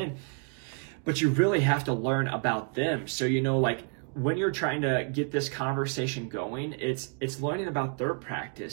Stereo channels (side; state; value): left; quieter; 39.8 dB